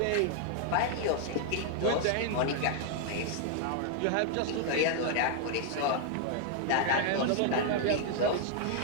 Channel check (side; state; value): both; different; correlation 0.00